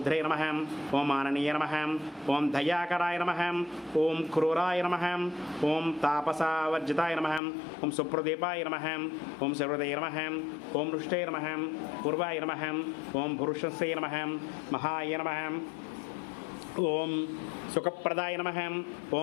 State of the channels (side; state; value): right; drops out; at 7.4 s